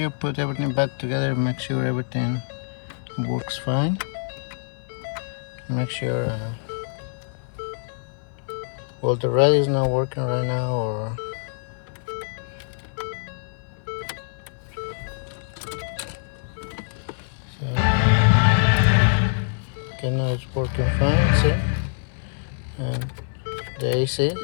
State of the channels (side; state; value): right; silent; 58 dB below the other